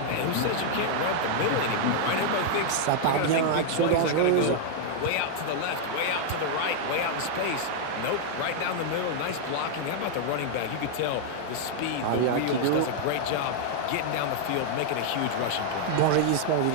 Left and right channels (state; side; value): different; both; correlation 0.00